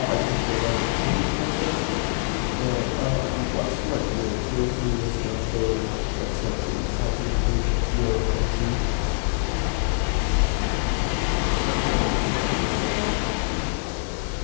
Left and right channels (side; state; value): right; silent; digital silence